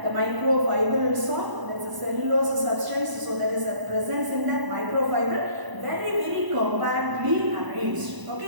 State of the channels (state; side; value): late; left; 1.0 ms